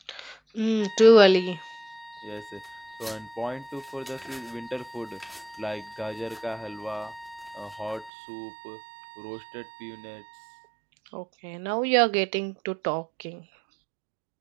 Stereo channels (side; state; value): left; drops out; at 8.1 s